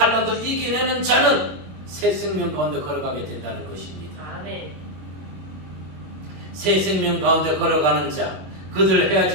이겨내는 자는 새 생명 가운데 걸어가게 된다는 것입니다. 아멘. 새 생명 가운데 걸어가는 자, 그들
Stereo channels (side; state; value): left; late; 21 ms